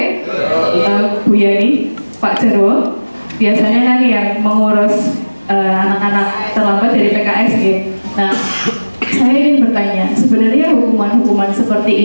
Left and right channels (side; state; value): both; inverted; correlation -1.00